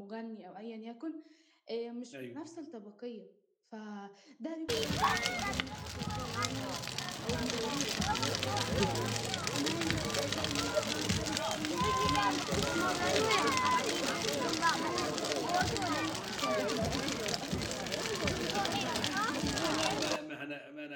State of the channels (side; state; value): both; identical; correlation 1.00